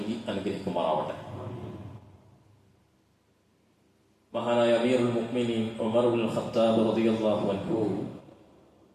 അനുഗ്രഹിക്കുമാറാവട്ടെ. മഹാനായ അമീറുൽ മുഅ്മിനീൻ ഉമർ ഇബ്നുൽ ഖത്താബ് റളിയല്ലാഹു അൻഹു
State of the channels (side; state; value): both; identical; correlation 1.00